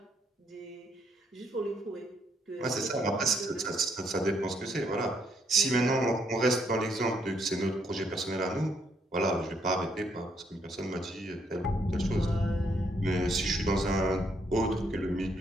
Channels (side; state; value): both; normal; correlation 0.72